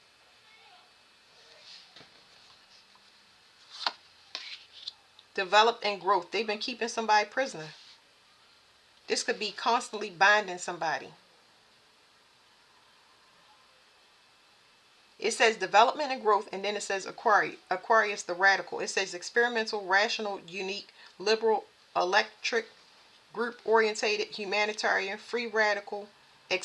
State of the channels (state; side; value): identical; both; correlation 1.00